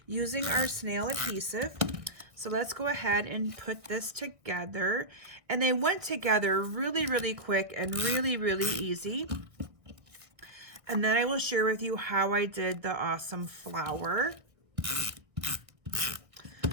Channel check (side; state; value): left; late; 1.7 ms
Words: using our snail adhesive. So let's go ahead and put this together. And they went together really, really quick and really, really easy. And then I will share with you how I did the awesome flower.